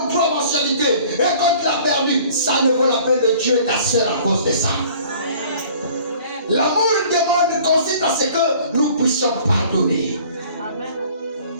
ou 3 mensualités, et quand tu l'as perdu, ça ne vaut la peine de tuer ta soeur à cause de ça. L'amour demande consiste à ce que nous puissions pardonner. Amen.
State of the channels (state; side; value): inverted; both; correlation -0.51